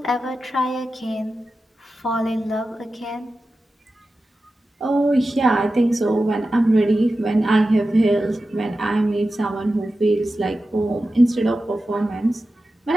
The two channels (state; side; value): normal; both; correlation 0.93